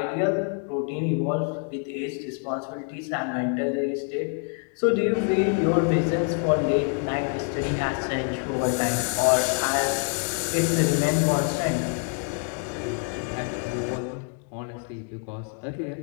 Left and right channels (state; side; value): quieter; right; 38.6 dB